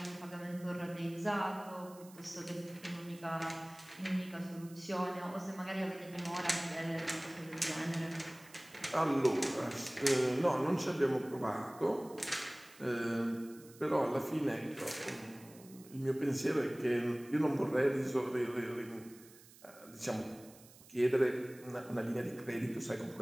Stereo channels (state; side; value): noise; right; hiss, 22 dB below the sound